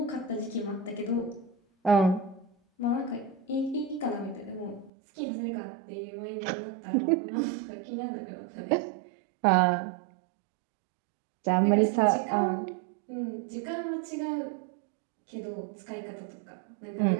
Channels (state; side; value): drops out; left; at 4.9 s